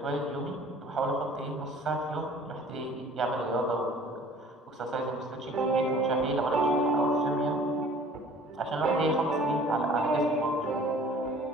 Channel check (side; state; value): both; normal; correlation 0.50